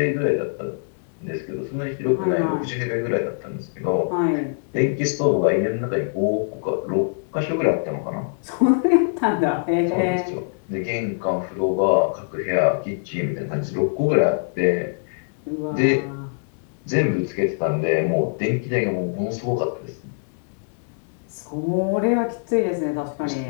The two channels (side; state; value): right; silent; digital silence